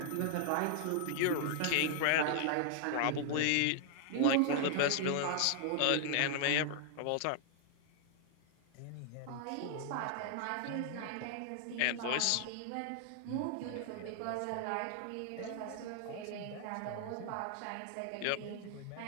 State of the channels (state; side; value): different; both; correlation 0.00